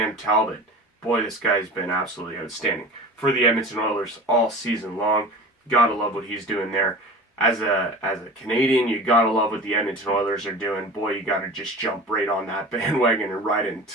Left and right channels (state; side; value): normal; both; correlation 0.36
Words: Talbot. Boy, this guy's been absolutely outstanding for the Edmonton Oilers all season long. Gotta love what he's doing there. As a Canadian, you gotta love what the Edmonton Oilers are doing. Boy, you gotta just jump right on that bandwagon and ride it